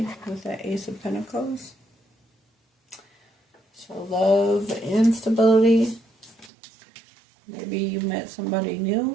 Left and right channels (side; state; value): left; drops out; at 6.5 s